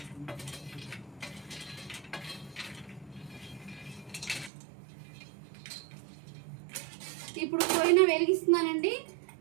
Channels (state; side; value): drops out; left; at 4.5 s